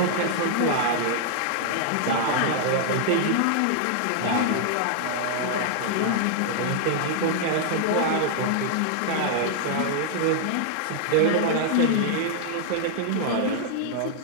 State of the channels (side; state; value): both; different; correlation -0.01